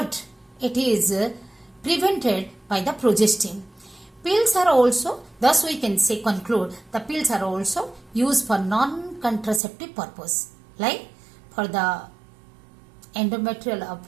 it is prevented by the progestin. Pills are also, thus we can say, conclude, the pills are also used for non-contraceptive purpose, like for the endometrial,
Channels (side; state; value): left; drops out; at 9.6 s